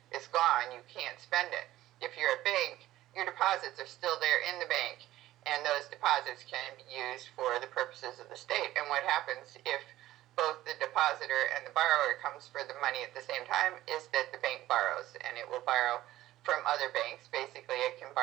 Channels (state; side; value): quieter; left; 15.1 dB